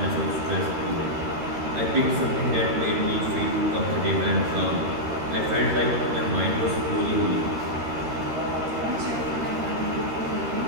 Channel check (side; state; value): left; late; 13 ms